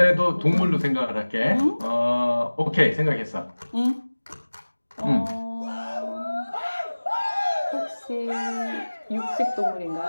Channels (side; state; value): both; inverted; correlation -1.00